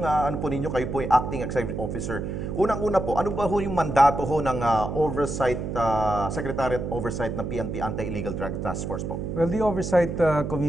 ano po ninyo, kayo po yung Acting Executive Officer? Unang-una po, ano ba ho yung mandato ho ng Oversight, Secretariat Oversight ng PNP Anti-Illegal Drug Task Force po? Well, the Oversight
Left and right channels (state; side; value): noise; right; hum, 4 dB below the sound